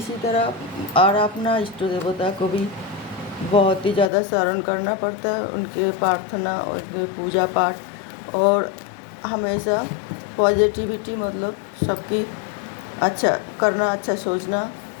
तरह और अपना इष्ट देवता को भी बहुत ही ज़्यादा स्मरण करना पड़ता है, उनके प्रार्थना और उनके पूजा पाठ, और हमेशा पॉजिटिविटी मतलब सबकी अच्छा करना, अच्छा सोचना,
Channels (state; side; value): drops out; right; at 4.1 s